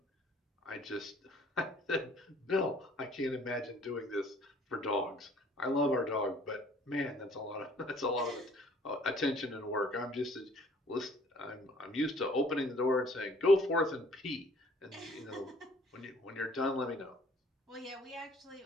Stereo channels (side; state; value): both; normal; correlation 0.56